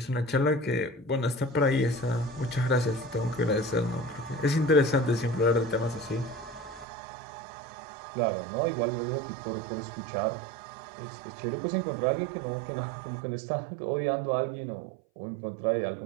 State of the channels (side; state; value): left; drops out; at 6.9 s